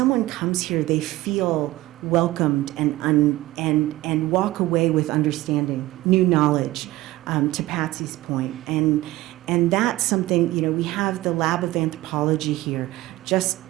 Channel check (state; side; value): quieter; left; 17.6 dB